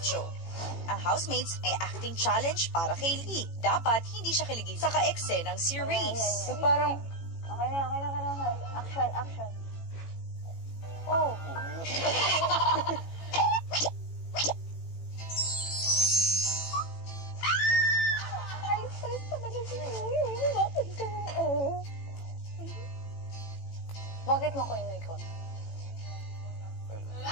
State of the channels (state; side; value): late; right; 18 ms